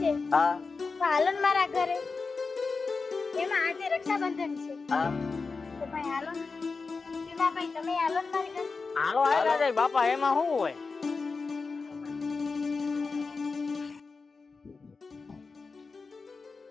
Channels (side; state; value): right; quieter; 4.4 dB